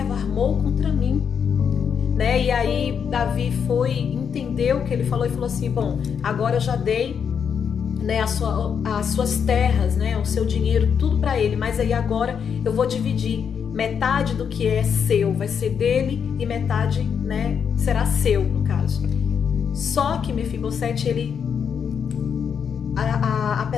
armou contra mim. Né? E aí Davi entendeu o que ele falou e falou assim: bom, agora eu já dei, né, as suas terras, né, o seu dinheiro, tudo para ele, mas aí agora eu vou dividir. Metade do que é seu vai ser dele e metade, né, será seu, no caso. Só que Mefibosete, ele,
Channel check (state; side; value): quieter; right; 7.2 dB